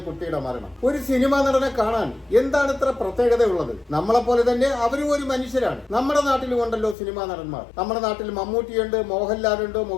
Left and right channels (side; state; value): right; drops out; at 7.0 s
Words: കുട്ടിയുടെ മരണം. ഒരു സിനിമാ നടനെ കാണാൻ എന്താണ് ഇത്ര പ്രത്യേകതയുള്ളത്? നമ്മളെ പോലെ തന്നെ അവരും ഒരു മനുഷ്യരാണ്. നമ്മുടെ നാട്ടിലും ഉണ്ടല്ലോ സിനിമാ നടന്മാർ. നമ്മുടെ നാട്ടിൽ മമ്മൂട്ടിയുണ്ട്, മോഹൻലാലുണ്ട്,